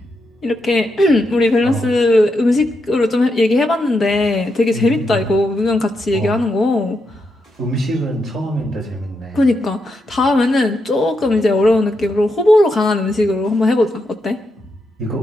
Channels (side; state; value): both; normal; correlation 0.83